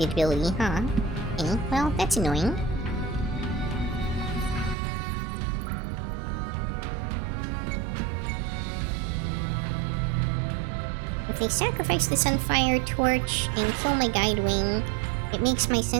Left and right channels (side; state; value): left; drops out; at 4.8 s